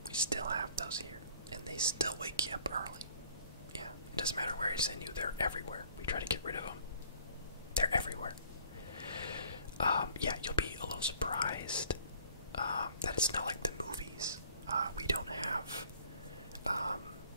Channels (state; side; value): inverted; both; correlation -0.55